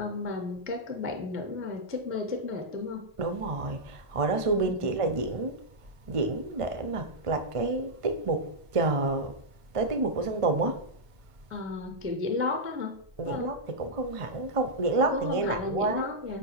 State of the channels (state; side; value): late; left; 1.5 ms